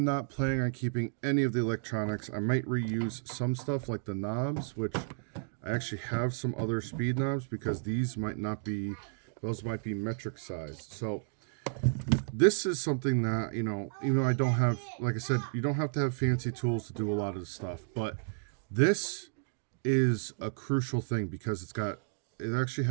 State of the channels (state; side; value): silent; left; digital silence